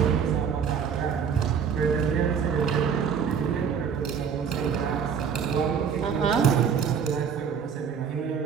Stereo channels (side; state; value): left; quieter; 7.0 dB